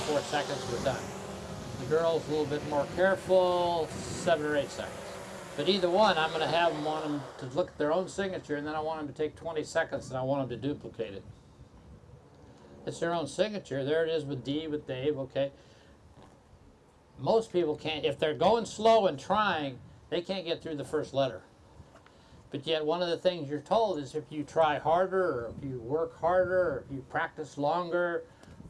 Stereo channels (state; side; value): identical; both; correlation 1.00